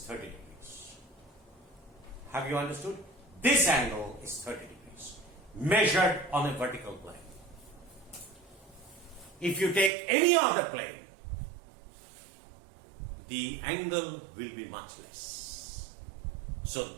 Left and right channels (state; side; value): drops out; left; at 9.9 s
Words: 30 degrees. Have you understood? This angle is 30 degrees. Measured on a vertical plane. If you take any other plane, the angle will be much less. So